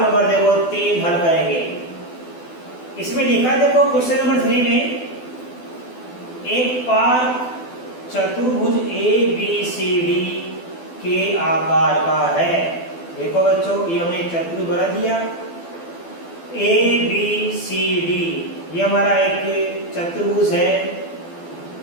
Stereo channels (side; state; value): right; late; 12 ms